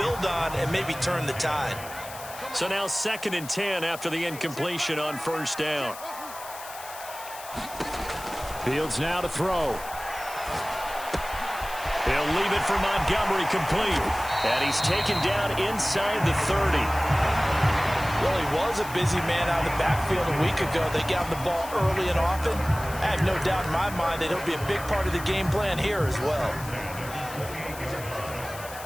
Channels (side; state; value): left; noise; hiss, 14 dB below the sound